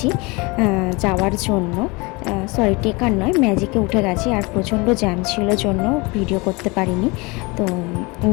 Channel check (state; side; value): quieter; right; 26.1 dB